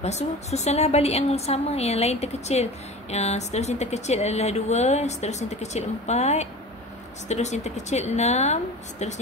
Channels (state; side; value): normal; both; correlation 0.35